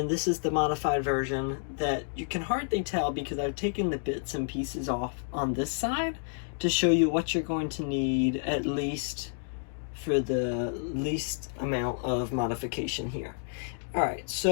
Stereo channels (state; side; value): silent; right; digital silence